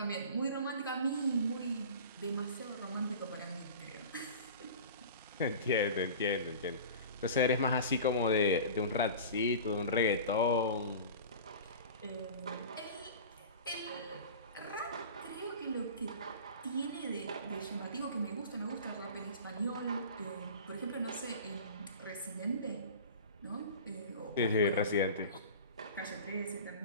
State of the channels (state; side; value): inverted; both; correlation -0.37